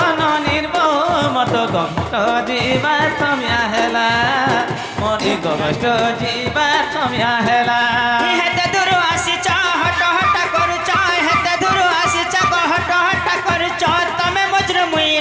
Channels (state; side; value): identical; both; correlation 1.00